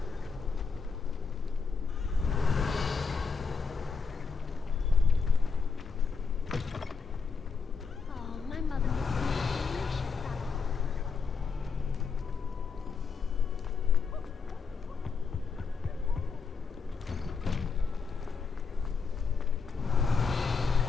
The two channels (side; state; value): right; quieter; 5.3 dB